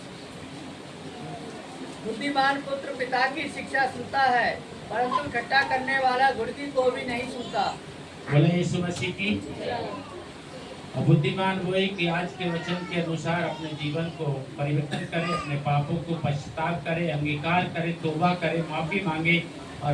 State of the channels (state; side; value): identical; both; correlation 1.00